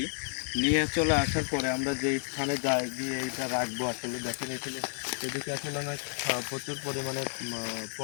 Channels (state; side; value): silent; right; 57 dB below the other